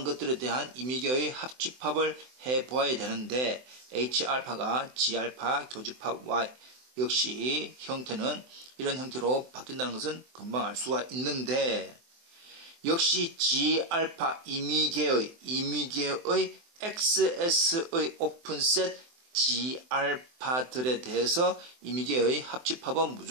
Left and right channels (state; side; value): late; left; 24 ms